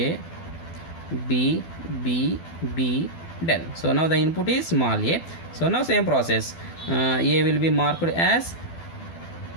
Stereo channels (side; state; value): right; late; 12 ms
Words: del. So now the input is small a, so now same process, A will be marked as